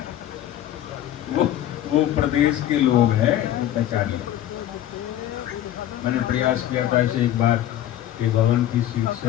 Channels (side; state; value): right; quieter; 12.2 dB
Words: वो प्रदेश के लोग हैं, पहचानिए। मैंने प्रयास किया था इसे एक बार कि भवन की सीट